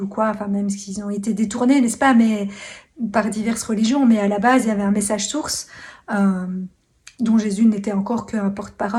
quoi, enfin, même s'ils ont été détournés, n'est-ce pas, mais par diverses religions, mais à la base, il y avait un message source, euh, dont Jésus n'était encore qu'un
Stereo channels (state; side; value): identical; both; correlation 1.00